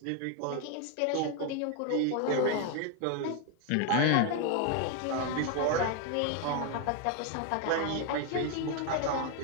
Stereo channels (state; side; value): different; both; correlation 0.01